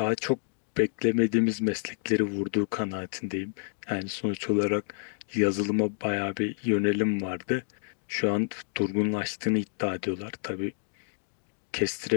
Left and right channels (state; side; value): silent; right; digital silence